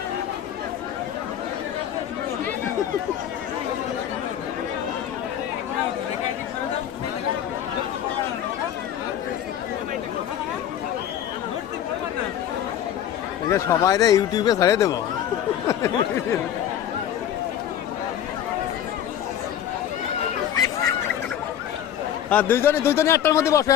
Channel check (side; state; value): right; quieter; 10.2 dB